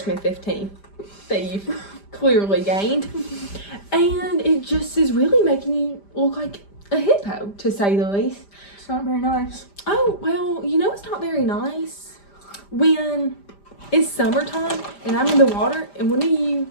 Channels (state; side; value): late; right; 5.0 ms